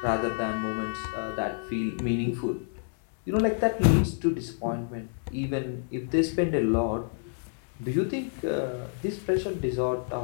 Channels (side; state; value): right; silent; digital silence